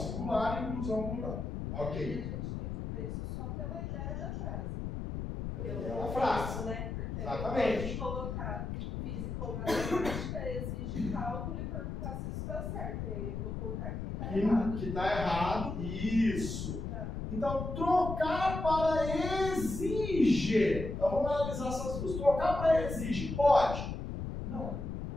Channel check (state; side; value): noise; left; rumble, 5 dB below the sound